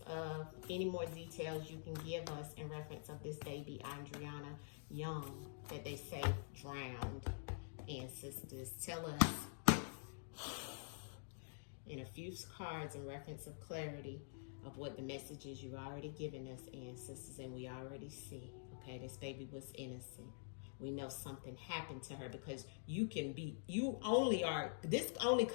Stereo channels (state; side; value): silent; right; digital silence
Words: any more details you can give us in reference of this baby, Adrianna Young, that they say drowned. Ancestors, tell us in a few cards in reference of clarity of what the messages you've already given us, ancestors, and we already see, okay, this baby was innocent. We know something happened to her, because this only